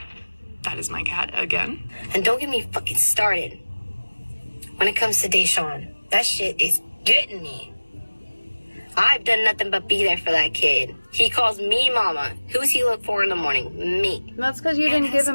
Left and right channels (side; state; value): both; inverted; correlation -1.00